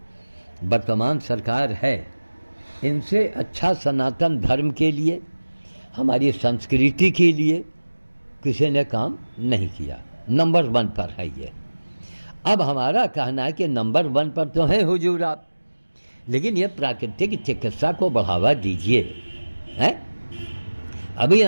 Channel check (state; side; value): inverted; both; correlation -1.00